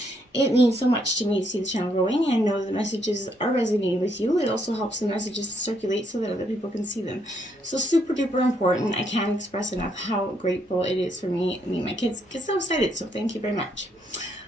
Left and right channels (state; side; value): normal; both; correlation 0.73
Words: It means so much to me to see the channel growing and know the messages are resonating with you. It also helps the messages to circulate so that other people can see them. So super duper important. I can't express enough how grateful it is for me. Me and my kids get so excited, so thank you very much.